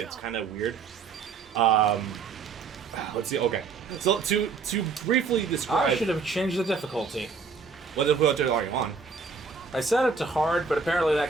kind of weird. Let's see. Okay, so to briefly describe, I should have changed the difficulty. What difficulty are you on? I set it to hard, but apparently that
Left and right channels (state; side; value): quieter; left; 5.1 dB